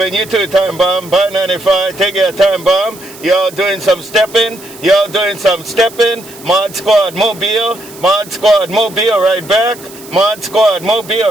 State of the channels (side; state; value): right; noise; hiss, 19 dB below the sound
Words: too, Time Bomb, by 95, take your Time Bomb, y'all doing some stepping, Mod Squad Mobile, right back, Mod Squad